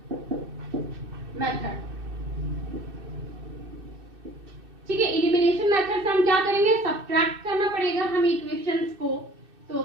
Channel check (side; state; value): left; late; 2.6 ms